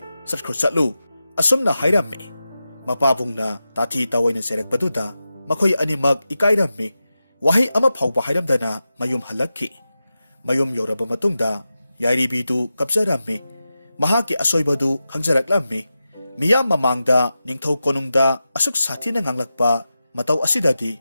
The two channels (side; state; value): both; inverted; correlation -0.92